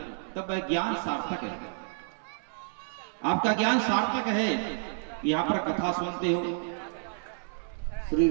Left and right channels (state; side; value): silent; left; 58 dB below the other